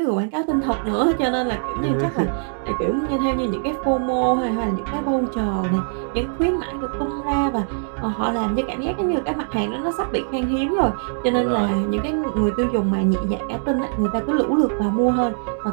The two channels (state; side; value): silent; left; digital silence